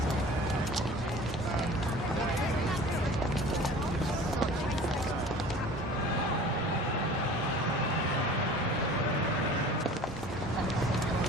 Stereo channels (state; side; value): normal; both; correlation 0.43